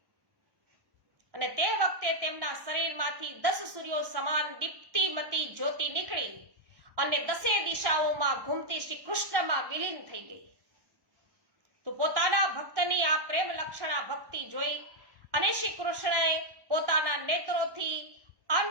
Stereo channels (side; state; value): left; late; 1.1 ms